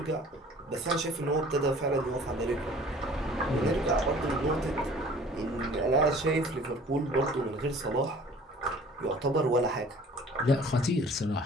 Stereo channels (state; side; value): normal; both; correlation 0.49